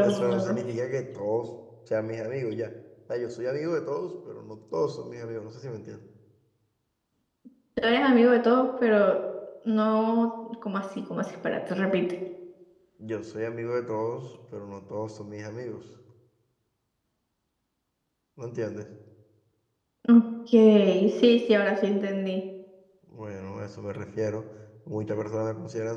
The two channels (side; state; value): both; identical; correlation 1.00